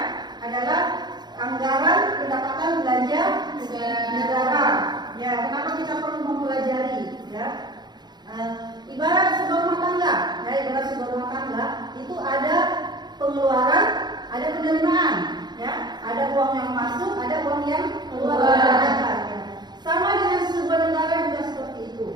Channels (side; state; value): left; late; 0.21 ms